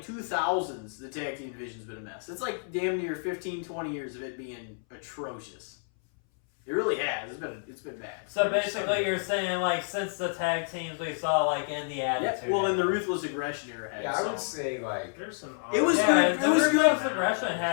the tag team division's been a mess. It's like damn near 15, 20 years of it being atrocious. It really has. It's been bad. so basically you're saying like since the tag teams we saw like in the Yeah, Attitude well, in the Era. Ruthless Aggression era had Yeah, I some. would say like There's some. It was Yeah, good. the It was Ruthless good. Aggression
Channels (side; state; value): right; silent; 58 dB below the other